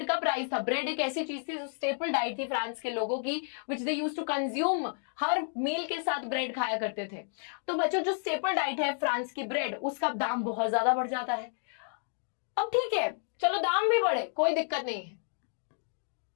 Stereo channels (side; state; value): right; silent; 57 dB below the other